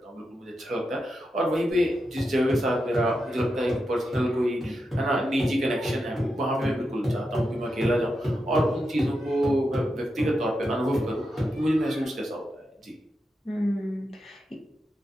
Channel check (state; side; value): normal; both; correlation 0.87